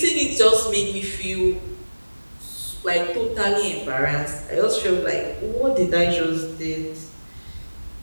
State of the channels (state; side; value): inverted; both; correlation -1.00